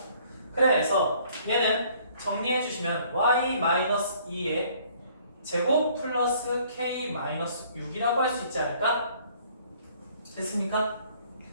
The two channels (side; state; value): both; inverted; correlation -0.59